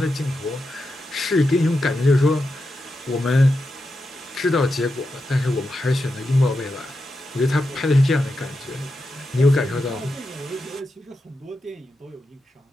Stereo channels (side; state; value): both; normal; correlation 0.88